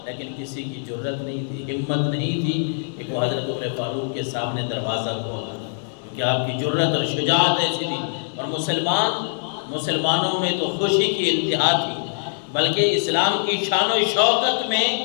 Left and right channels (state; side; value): silent; right; digital silence